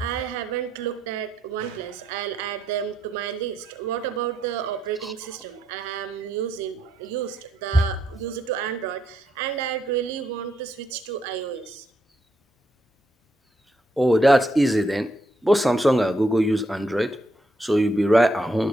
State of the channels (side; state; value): both; normal; correlation 0.77